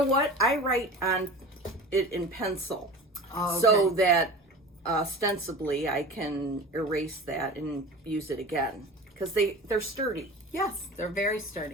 what? I write on it in pencil. Oh, okay. So that ostensibly I can erase that and use it again. Because they're sturdy. Yes, they're very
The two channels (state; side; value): normal; both; correlation 0.35